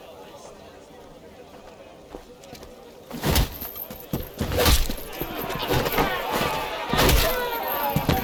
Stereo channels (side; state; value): both; identical; correlation 1.00